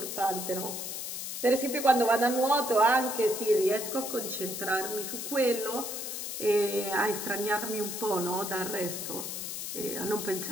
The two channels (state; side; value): noise; left; hiss, 5 dB below the sound